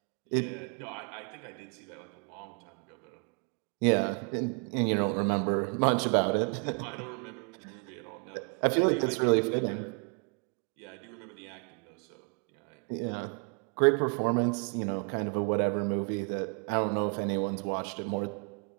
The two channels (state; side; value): quieter; left; 37.9 dB